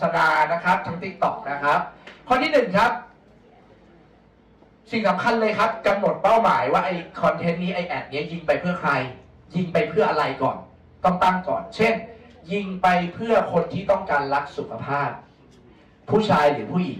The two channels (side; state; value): both; identical; correlation 1.00